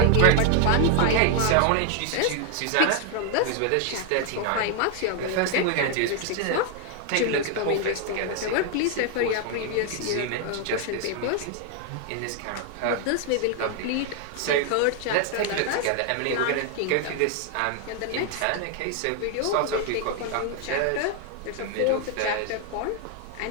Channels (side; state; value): both; different; correlation 0.01